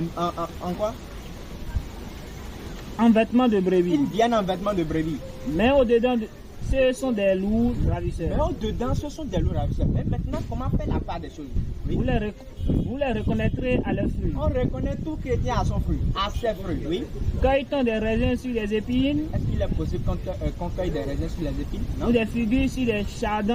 quoi? En vêtements de brebis. Ils viennent en vêtements de brebis. Mais au-dedans, ce sont des loups ravisseurs. Mais au-dedans, ce sont des loups ravisseurs. Mais maintenant, comment faire la part des choses? Oui. Vous les reconnaîtrez à leurs fruits. On reconnaît tout chrétien à son fruit, à ses fruits, oui. Cueille-t-on des raisins sur des épines? Est-ce qu'il est possible qu'on cueille des raisins sur les épines? Non. Ou des figues sur des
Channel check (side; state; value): both; identical; correlation 1.00